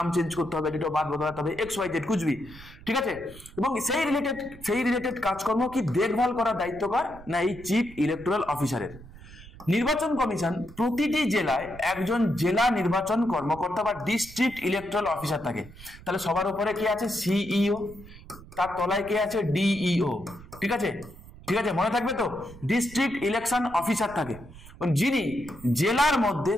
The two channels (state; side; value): noise; right; rumble, 18 dB below the sound